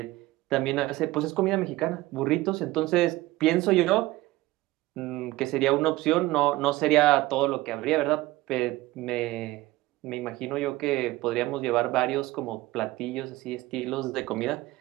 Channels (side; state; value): left; quieter; 18.5 dB